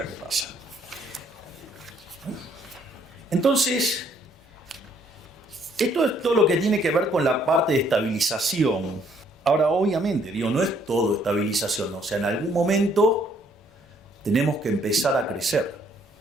que pasan. Entonces, esto es todo lo que tiene que ver con la parte de estabilización. Ahora, obviamente, digo, no es todo estabilización, ¿no? O sea, en algún momento tenemos que empezar a crecer.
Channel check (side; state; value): both; normal; correlation 0.66